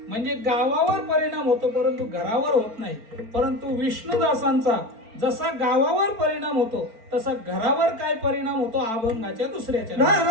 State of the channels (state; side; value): late; left; 4.4 ms